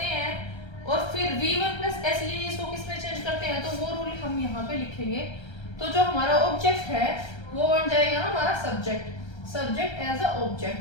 हैं और फिर V1 प्लस SEIS को किस में चेंज करते हैं, तो वो रूल हम यहाँ पे लिखेंगे। तो जो हमारा ऑब्जेक्ट है वो बन जाएगा हमारा subject as a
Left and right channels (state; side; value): late; right; 1.3 ms